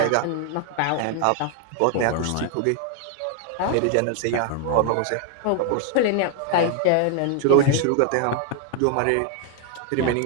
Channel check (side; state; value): both; different; correlation 0.00